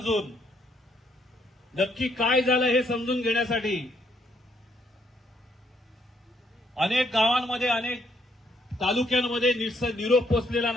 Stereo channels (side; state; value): both; normal; correlation 0.72